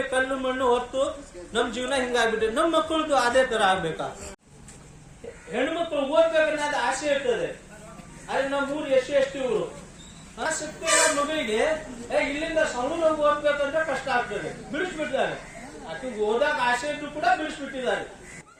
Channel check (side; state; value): both; identical; correlation 1.00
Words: ಕಲ್ಲು ಮಣ್ಣು ಹೊತ್ತು ನಮ್ ಜೀವನ ಹಿಂಗಾಗ್ಬಿಟ್ಟೆ. ನಮ್ ಮಕ್ಕಳದು ಅದೇ ತರ ಆಗ್ಬೇಕಾ? ಹೆಣ್ಮಕ್ಳು ಓದ್ಬೇಕನ್ನೋದು ಆಸೆ ಇರ್ತದೆ, ಆದ್ರೆ ನಮ್ಮ ಊರು SC/ST ಊರು. ಶಕ್ತಿ ಮಗಳಿಗೆ ಇಲ್ಲಿಂದ ಸೌಂಡ್ ಓದ್ಬೇಕಂದ್ರೆ ಕಷ್ಟ ಆಗ್ತದೆ, ಬಿಡಿಸ್ಬಿಡ್ತಾರೆ. ಅದು ಓದಾಕ ಆಸೆ ಇದ್ದು ಕೂಡ ಬಿಡಿಸ್ಬಿಟ್ಟಿದ್ದಾರೆ.